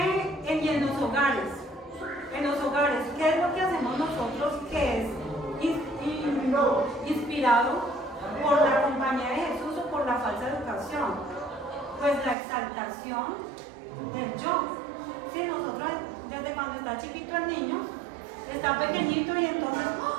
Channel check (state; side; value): drops out; left; at 12.4 s